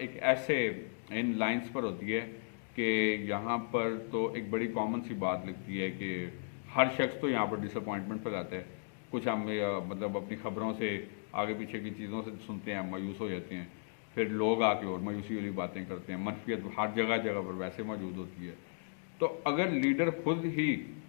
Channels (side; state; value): right; silent; digital silence